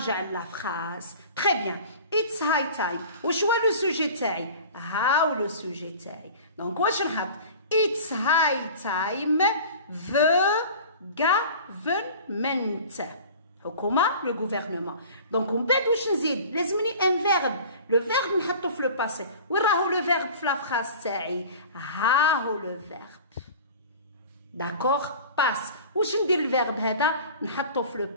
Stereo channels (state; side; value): inverted; both; correlation -0.41